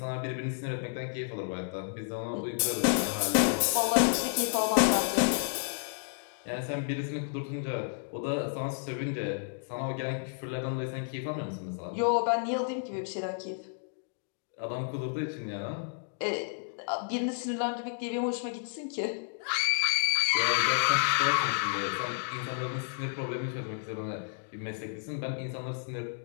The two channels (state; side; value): silent; right; digital silence